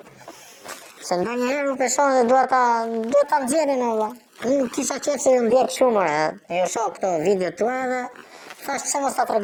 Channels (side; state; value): both; identical; correlation 1.00